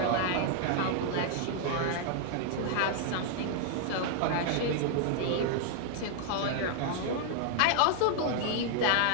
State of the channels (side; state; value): both; different; correlation 0.00